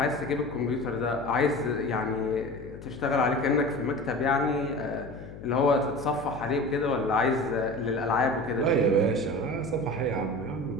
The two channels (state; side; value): noise; left; hum, 14 dB below the sound